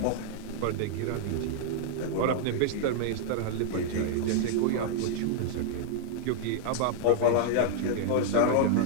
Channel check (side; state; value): both; different; correlation -0.01